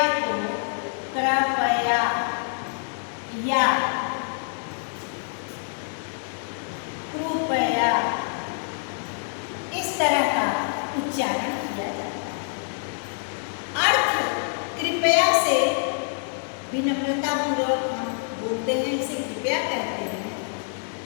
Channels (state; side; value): silent; right; digital silence